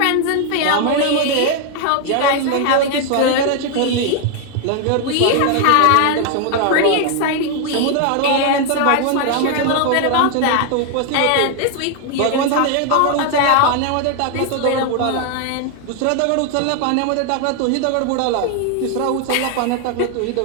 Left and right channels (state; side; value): different; both; correlation 0.00